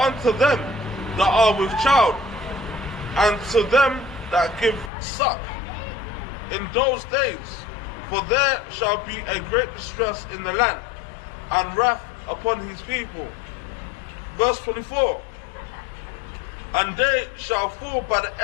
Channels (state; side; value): drops out; right; at 4.9 s